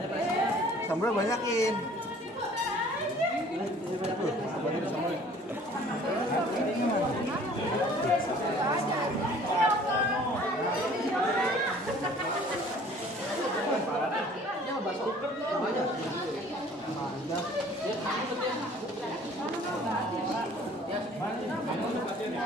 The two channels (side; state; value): both; normal; correlation 0.52